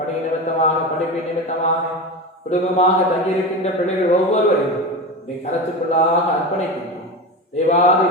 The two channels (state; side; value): normal; both; correlation 0.24